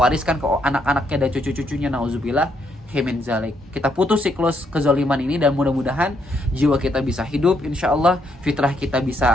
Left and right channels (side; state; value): both; normal; correlation 0.74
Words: ke anak-anaknya dan cucu-cucunya, nauzubillah min zalik. Kita putus siklus kezaliman ini, dan mudah-mudahan jiwa kita bisa hidup, insyaallah fitrah kita